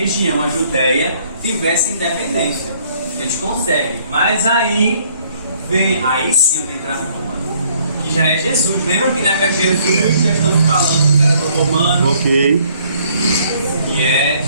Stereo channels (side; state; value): both; inverted; correlation -0.63